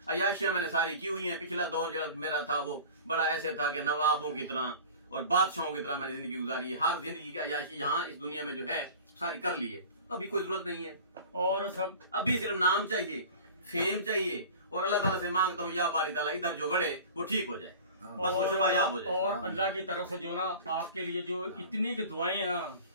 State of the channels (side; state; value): both; inverted; correlation -0.40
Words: अयाशियां मैंने सारी की हुई हैं। पिछला दौर जब मेरा था वो बड़ा ऐसे था कि नवाबों की तरह और बादशाहों की तरह मैंने जिंदगी गुजारी है। हर जिंदगी की अयाशी यहाँ इस दुनिया में जो है सारी कर ली है। अभी कोई जरूरत नहीं है और सब अभी सिर्फ नाम चाहिए, फेम चाहिए और अल्लाह ताला से मांगता हूँ या बारी ताला इधर जो गड़े वो ठीक हो जाए, बस वो शुभायाब हो जाए। और अल्लाह की तरफ से जो ना आपके लिए जो इतनी की दुआएं हैं ना